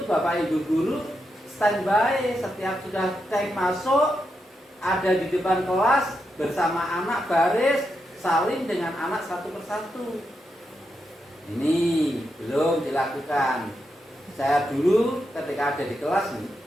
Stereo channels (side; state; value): both; normal; correlation 0.84